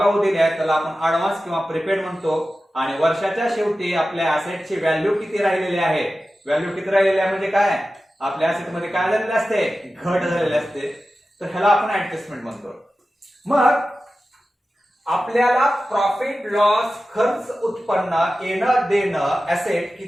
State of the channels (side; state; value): both; normal; correlation 0.94